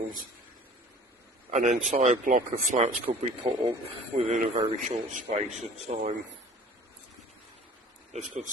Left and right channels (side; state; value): both; normal; correlation 0.46